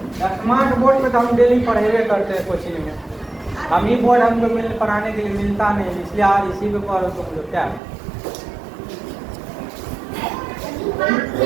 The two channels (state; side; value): drops out; left; at 7.8 s